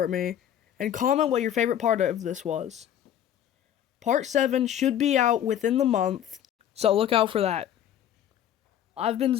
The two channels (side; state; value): right; quieter; 10.4 dB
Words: me, and comment what your favorite part of this was. Part 7 should be out within the month, so look out for that. I've been